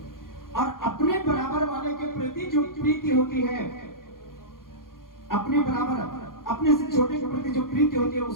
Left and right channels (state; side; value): late; right; 0.91 ms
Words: और अपने बराबर वाले के प्रति जो प्रीति होती है, अपने बराबर, अपने से छोटे के प्रति जो प्रीति होती है